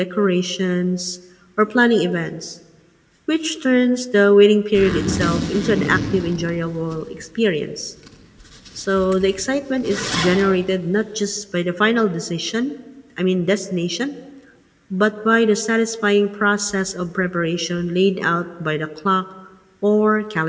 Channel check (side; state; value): both; identical; correlation 1.00